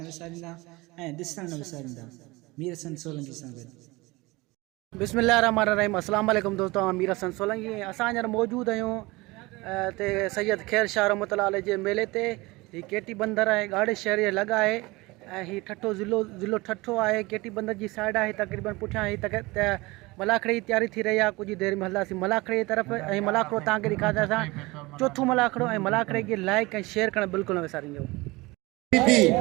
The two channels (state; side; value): quieter; left; 22.4 dB